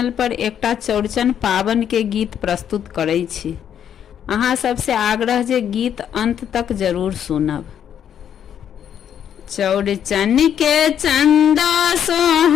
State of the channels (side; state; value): right; quieter; 9.2 dB